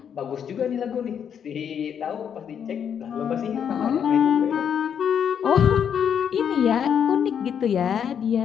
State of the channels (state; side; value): quieter; right; 8.1 dB